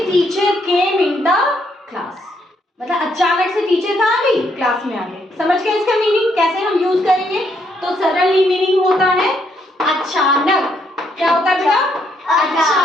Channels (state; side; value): normal; both; correlation 0.73